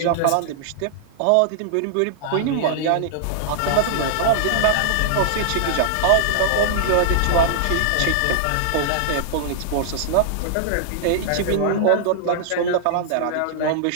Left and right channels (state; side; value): different; both; correlation -0.01